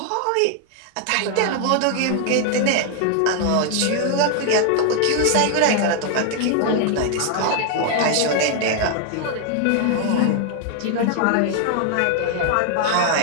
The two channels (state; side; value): different; both; correlation 0.00